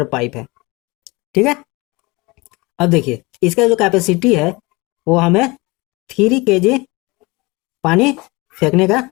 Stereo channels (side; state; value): right; quieter; 24.4 dB